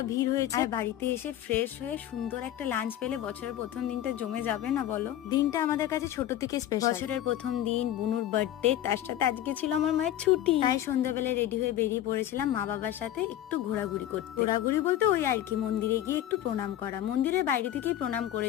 ভিড় হয়েছে। আর বাড়িতে এসে ফ্রেশ হয়ে সুন্দর একটা লাঞ্চ পেলে বছরের প্রথম দিনটা জমে যাবে না বলো? দিনটা আমাদের কাছে ছোট থেকে স্পেশাল। বছরের প্রথম দিন, বুনুর বার্থডে, তার সাথে আজকে ছিল আমার মায়ের ছুটি। তাই সন্ধ্যাবেলায় রেডি হয়ে বেরিয়ে পড়েছিলাম মা বাবার সাথে একটু ঘোরাঘুরি করতে। ঘোরাঘুরি বলতে ওই আর কি, মন্দিরে গিয়ে একটু প্রণাম করা। মন্দিরের বাইরে থেকেই প্রণাম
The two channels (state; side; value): quieter; right; 12.2 dB